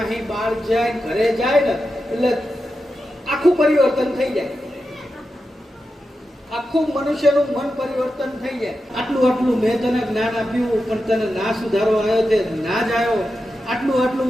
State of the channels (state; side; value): normal; both; correlation 0.90